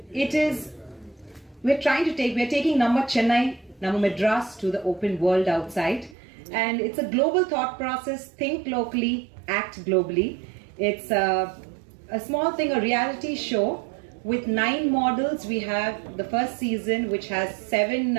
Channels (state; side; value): drops out; left; at 6.2 s